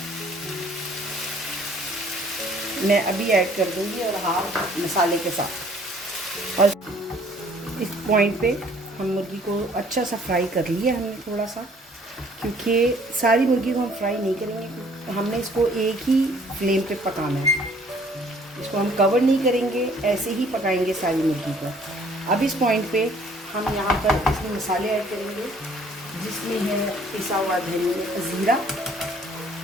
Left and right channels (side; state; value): both; normal; correlation 0.58